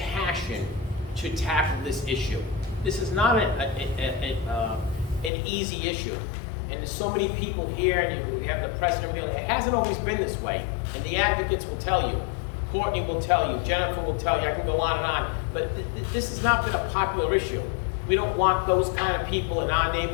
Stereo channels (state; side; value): drops out; right; at 5.3 s